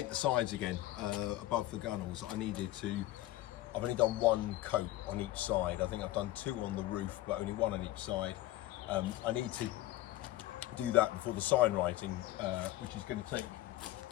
sides again above the gunnels. I've only done one coat on each side. I think I've done two on the roof, but only one on each side. I need to do that before the sign writing, which is going to take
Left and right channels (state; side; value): quieter; right; 15.7 dB